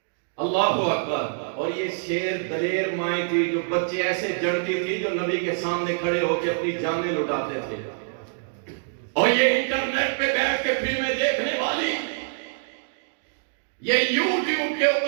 اللہ اکبر، اور یہ شیر دلیر مائیں تھی جو بچے ایسے جڑتی تھی جو نبی کے سامنے کھڑے ہو کے اپنی جانیں لٹاتے تھے، اور یہ انٹرنیٹ پہ بیٹھ کے فلمیں دیکھنے والی، یہ یوٹیوب کے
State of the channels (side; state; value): left; silent; digital silence